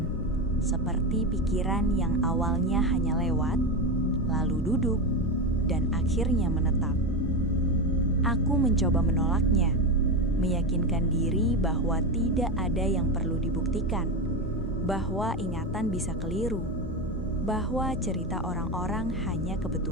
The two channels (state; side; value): normal; both; correlation 0.16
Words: seperti pikiran yang awalnya hanya lewat, lalu duduk, dan akhirnya menetap. Aku mencoba menolaknya, meyakinkan diri bahwa tidak ada yang perlu dibuktikan, bahwa ingatan bisa keliru, bahwa cerita orang-orang hanya